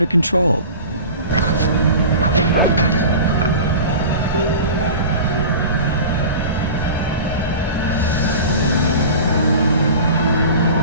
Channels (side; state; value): both; inverted; correlation -0.37